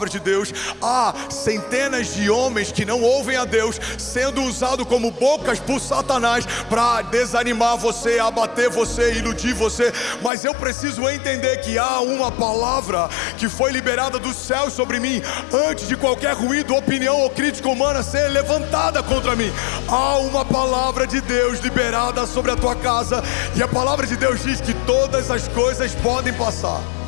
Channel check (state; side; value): drops out; right; at 10.3 s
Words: de Deus, há centenas de homens que não ouvem a Deus sendo usados como bocas por Satanás para desanimar você, abater você, iludir você. Mas eu preciso entender que há uma palavra que foi liberada do céu sobre mim antes de qualquer ruído, opinião ou crítica humana ser levantada contra mim. Há uma palavra de Deus liberada sobre a tua casa, e a palavra de Deus diz que todas as coisas podem passar,